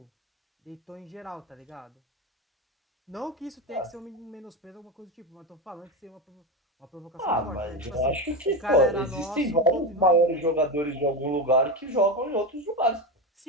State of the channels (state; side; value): normal; both; correlation 0.16